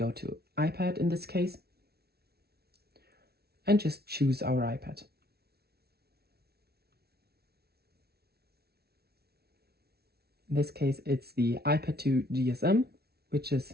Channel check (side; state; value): left; late; 0.46 ms